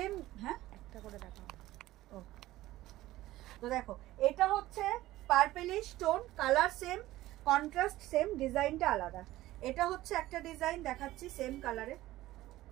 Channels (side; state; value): left; quieter; 16.2 dB